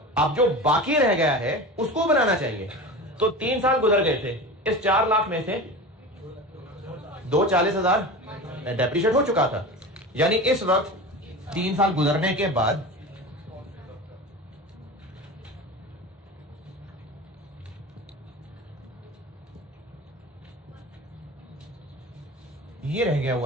अब जो बाकी रह गया है उसको बनाना चाहिए। तो 3 साल गुजर गए थे, इस 4 लाख में से 2,40,000 डेप्रिशिएट हो चुका था, यानी इस वक्त 3 साल गुजरने के बाद ये रह गया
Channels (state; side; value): normal; both; correlation 0.31